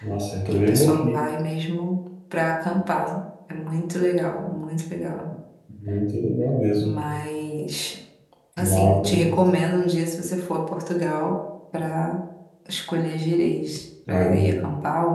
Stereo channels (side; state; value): both; identical; correlation 1.00